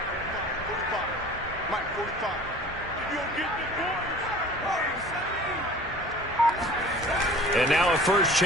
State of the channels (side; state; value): both; normal; correlation 0.45